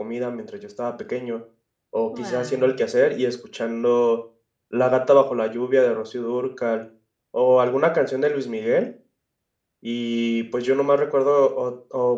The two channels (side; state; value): both; identical; correlation 1.00